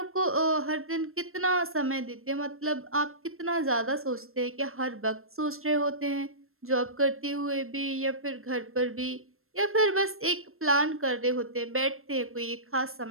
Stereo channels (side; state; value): left; late; 0.62 ms